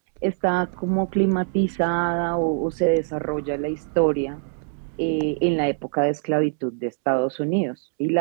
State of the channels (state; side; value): silent; left; digital silence